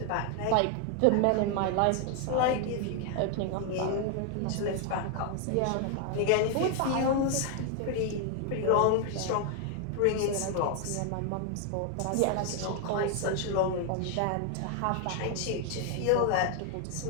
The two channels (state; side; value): different; both; correlation 0.00